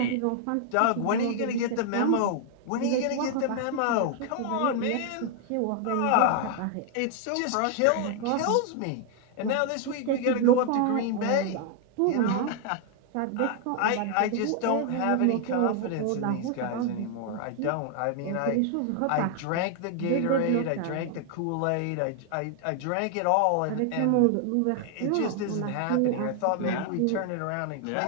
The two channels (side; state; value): both; different; correlation 0.00